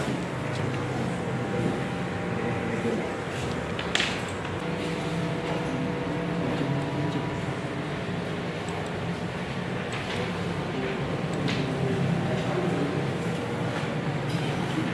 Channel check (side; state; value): both; identical; correlation 1.00